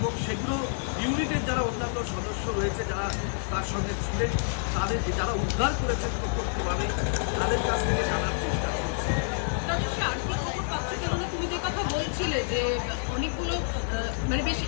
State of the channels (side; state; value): right; silent; digital silence